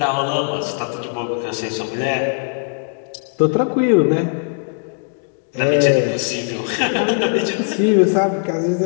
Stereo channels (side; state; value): right; silent; 58 dB below the other